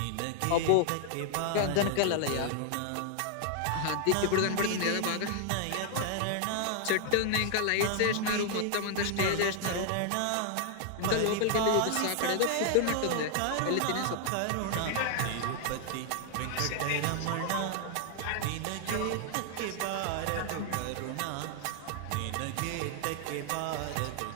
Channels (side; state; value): both; different; correlation 0.00